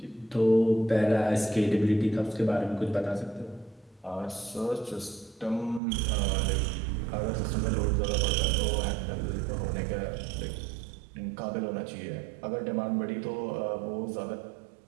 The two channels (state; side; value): drops out; left; at 5.8 s